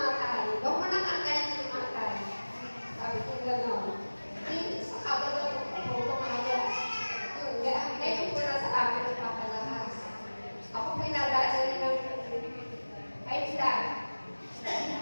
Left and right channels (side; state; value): both; inverted; correlation -1.00